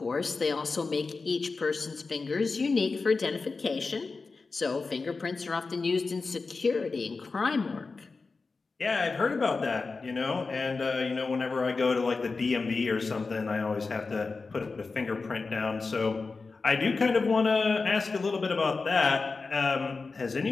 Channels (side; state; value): right; quieter; 4.1 dB